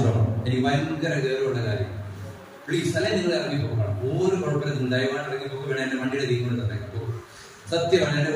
എനിക്ക് ഭയങ്കര ഗൗരവമുള്ള കാര്യം. പ്ലീസ്, അല്ലെ നിങ്ങൾ ഇറങ്ങിപ്പോക്കണം. ഒരു കുഴപ്പമില്ല, നിങ്ങൾ ദയവായിട്ട് ഇറങ്ങിപ്പോക്ക്. വേണം എന്റെ വണ്ടിയുടെ തീ കൊണ്ട് തന്നെ സത്യമാണ്. എന്റെ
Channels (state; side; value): identical; both; correlation 1.00